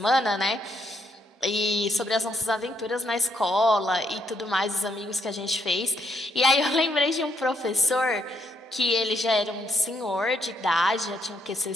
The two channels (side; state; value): both; normal; correlation 0.74